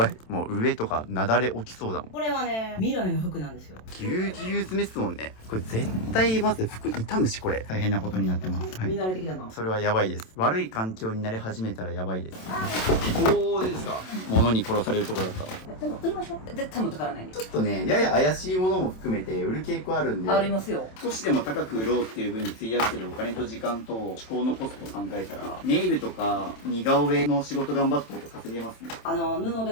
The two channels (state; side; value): late; right; 27 ms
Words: い。もう上とかなだれ起きそうだもん。これはね、未来の服なんですよ。ぎゅうぎゅう詰めっすもんね。これ絶対まず服傷むし、これ。大変なことになってます。はい。見慣れてきたな。それはやばいです。悪い環境になり始めたらやばいです。おー、ですか。物に殺されるところだった。でも売りましょう。絶対持ってからないね。ちょっとね、やや怪しいものも含めて売る傾向あるんで。ありますよ。少しでも高く売ろうっていう風に費やしてるお金と時間と思考のコストを考えたら、ネイルとか似顔絵の仕事頑張った方が稼げますね。布で